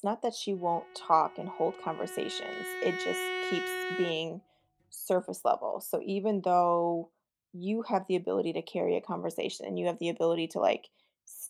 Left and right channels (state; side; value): identical; both; correlation 1.00